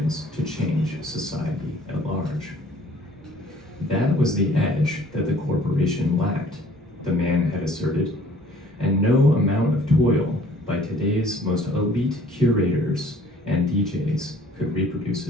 to change society at large. That was the edge that the corporation corporation lacked, the man had asserted, and no amount of toil by today's most elite curators and DJs could reproduce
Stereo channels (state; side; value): normal; both; correlation 0.55